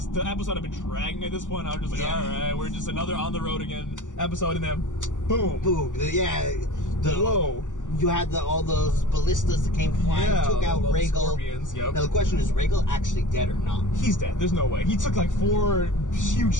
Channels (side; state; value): right; late; 0.87 ms